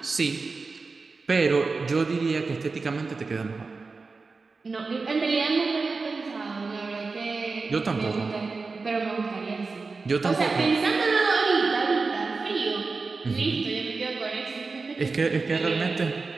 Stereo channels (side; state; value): left; quieter; 4.2 dB